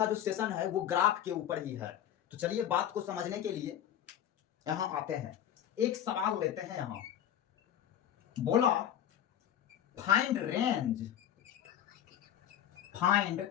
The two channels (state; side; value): quieter; right; 10.6 dB